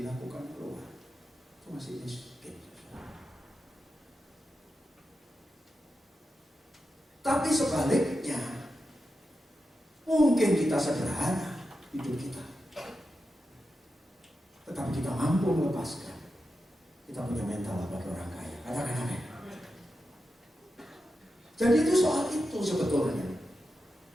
keluar, itu masih miskin. Tapi sebaliknya, mungkin kita sederhana hidup kita, tetapi kita mampu melepaskan. Kita punya mental bagi orang kaya. Katakan amin. Jadi itu soal itu sebetulnya.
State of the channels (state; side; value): normal; both; correlation 0.89